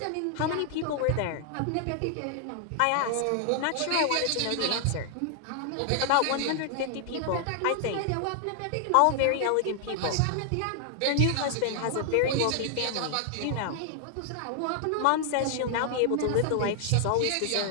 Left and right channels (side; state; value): both; different; correlation 0.00